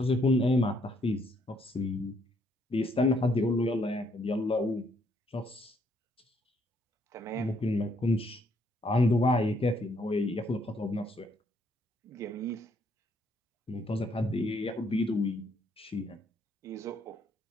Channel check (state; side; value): normal; both; correlation 0.70